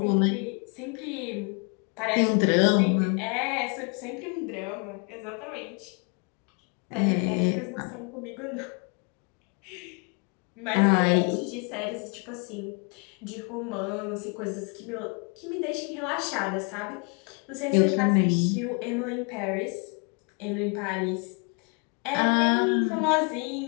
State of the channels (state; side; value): quieter; right; 35.3 dB